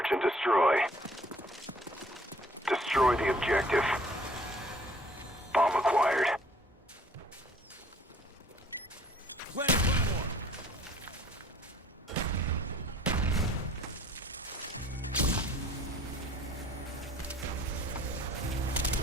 and destroy. Destroy the objective. Bomb acquired. Planning Claymore.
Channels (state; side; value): normal; both; correlation 0.54